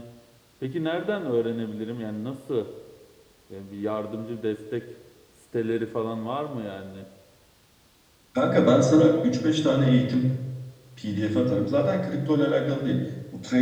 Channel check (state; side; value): identical; both; correlation 1.00